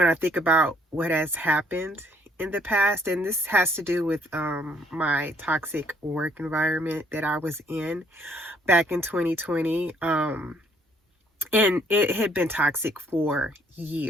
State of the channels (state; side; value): normal; both; correlation 0.65